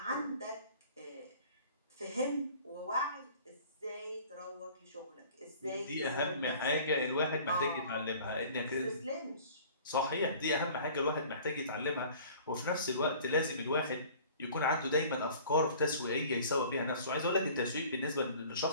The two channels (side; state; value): both; inverted; correlation -0.48